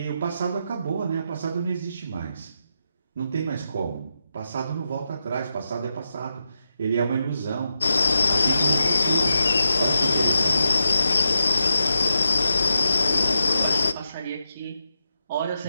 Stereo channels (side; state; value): both; inverted; correlation -0.87